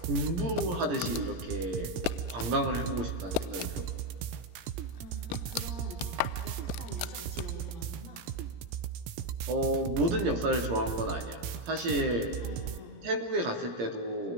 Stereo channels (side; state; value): left; late; 17 ms